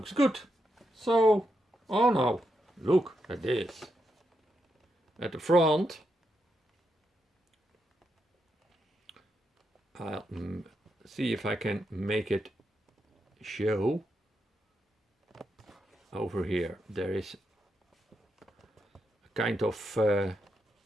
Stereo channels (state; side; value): normal; both; correlation 0.83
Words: good. So, oh no, look at this. At the front, I'll see if I can make it show. Over here, there is a kind of